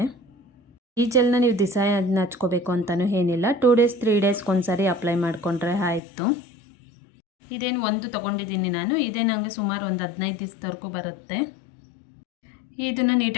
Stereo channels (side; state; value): right; drops out; at 6.0 s